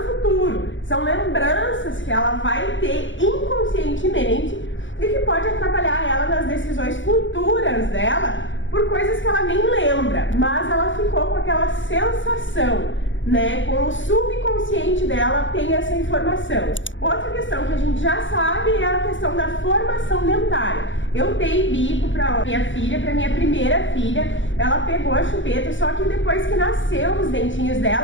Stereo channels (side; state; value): right; late; 0.56 ms